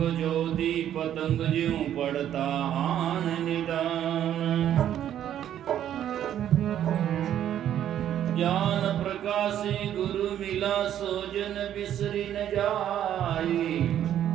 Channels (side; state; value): left; quieter; 10.8 dB